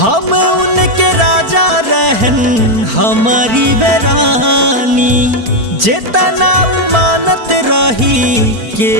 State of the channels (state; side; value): late; left; 4.4 ms